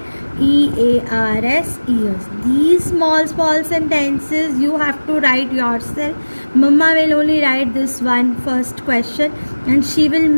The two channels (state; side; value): inverted; both; correlation -1.00